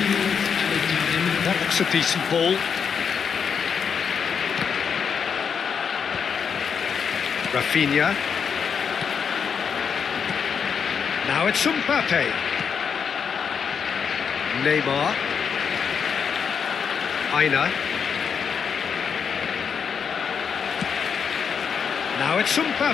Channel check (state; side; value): quieter; right; 6.7 dB